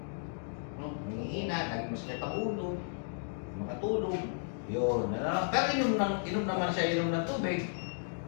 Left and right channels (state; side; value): silent; right; digital silence